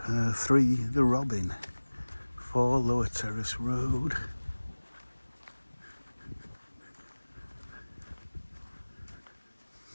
3, the Robin, 4 Lower Terrace Road.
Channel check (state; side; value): inverted; both; correlation -1.00